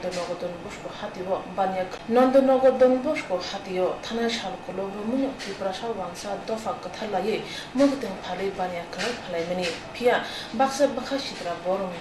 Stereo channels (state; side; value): identical; both; correlation 1.00